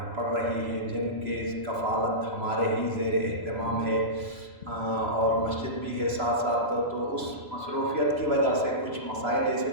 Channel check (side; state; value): left; late; 3.0 ms